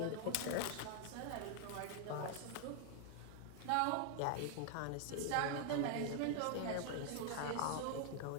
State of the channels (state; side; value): different; both; correlation 0.00